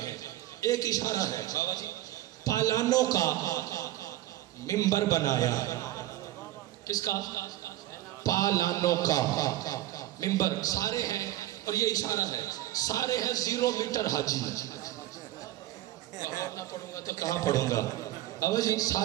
ہیں، ایک اشارہ ہے بابا جی، پالانوں کا منبر بنایا۔ کس کا؟ پالانوں کا منبر، سارے ہیں، اور یہ اشارہ ہے، سارے ہیں 0 میٹر حاجی۔ اور نہ پڑھوں گا تو کہاں پڑھوں گا بابا جی؟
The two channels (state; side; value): quieter; left; 14.7 dB